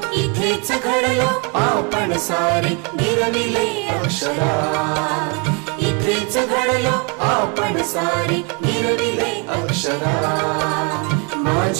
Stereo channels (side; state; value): left; quieter; 33.3 dB